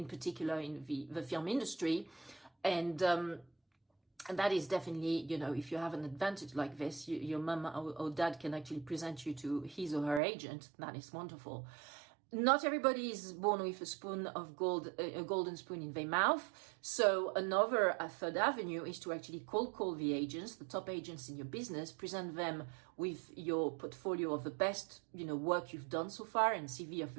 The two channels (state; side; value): drops out; left; at 10.2 s